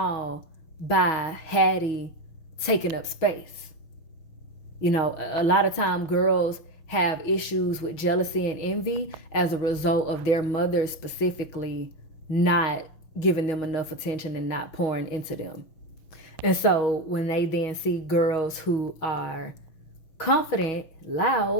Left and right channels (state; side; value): late; right; 6.2 ms